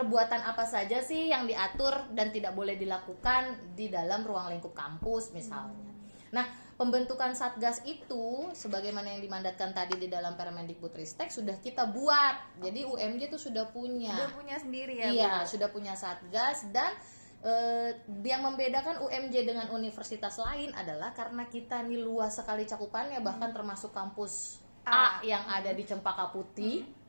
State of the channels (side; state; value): both; inverted; correlation -1.00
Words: apa saja sih yang diatur dan tidak boleh dilakukan di dalam ruang lingkup kampus misalnya. Nah, pembentukan Satgas itu sebagaimana yang dimandatkan tadi di dalam Permendikbudristek sudah kita buat. Jadi UMJ itu sudah punya. Sudah punya sendiri ya. Iya, Bu? sudah punya Satgas, dan yang membedakan UMJ dengan universitas lain adalah karena kita ini luas sekali cakupannya, bahkan termasuk kampus A yang ada di Cempaka Putih.